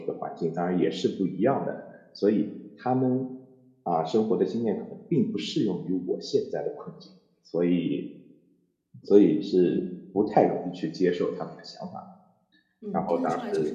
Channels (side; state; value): both; identical; correlation 1.00